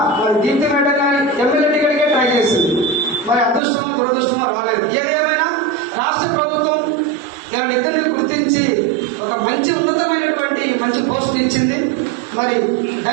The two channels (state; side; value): drops out; left; at 3.6 s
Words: మరి దీప్తి మేడం కానీ ఎమ్మెల్యే టికెట్కే ట్రై చేసింది. మరి అదృష్టమో దురదృష్టమో రాలేదు. ఏదేమైనా రాష్ట్ర ప్రభుత్వం వీళ్ళిద్దరిని గుర్తించి ఒక మంచి ఉన్నతమైనటువంటి మంచి పోస్ట్ ఇచ్చింది. మరి